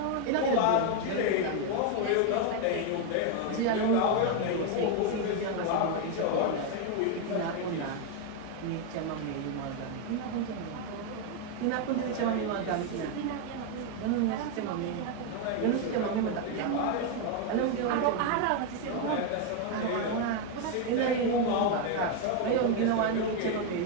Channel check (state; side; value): different; both; correlation 0.01